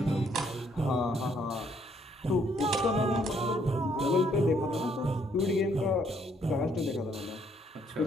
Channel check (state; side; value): normal; both; correlation 0.68